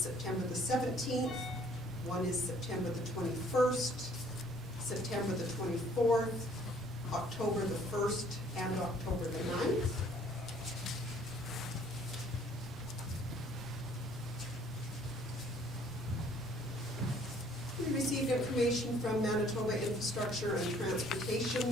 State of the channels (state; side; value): normal; both; correlation 0.59